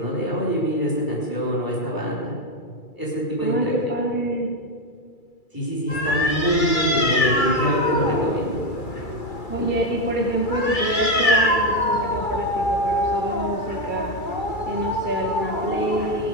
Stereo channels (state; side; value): late; right; 2.3 ms